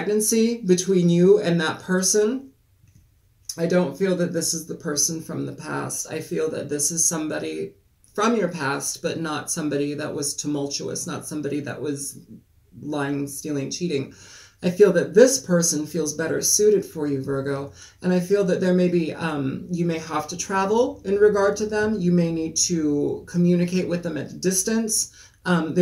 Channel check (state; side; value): identical; both; correlation 1.00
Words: between you and that person. I don't feel that this is the person from the past. I feel that this is somebody from your past, but not somebody that was tumultuous, not somebody that was lying, stealing, cheating. I feel that this person feels better suited for you, Virgo. And I feel that there may be, you may have to travel in regard to them. You may need to communicate with them at a distance.